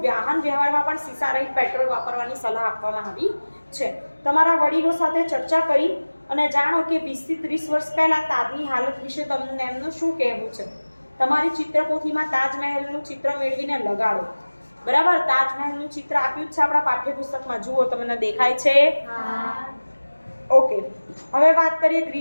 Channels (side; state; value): both; inverted; correlation -1.00